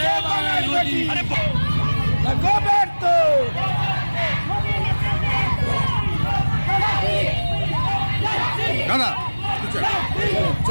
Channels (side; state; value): both; inverted; correlation -1.00